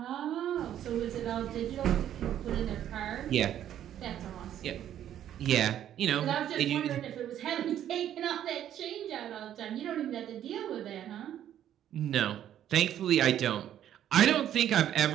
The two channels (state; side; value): quieter; left; 10.9 dB